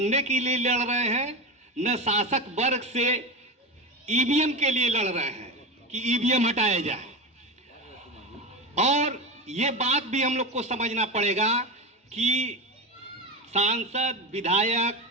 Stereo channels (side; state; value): both; normal; correlation 0.20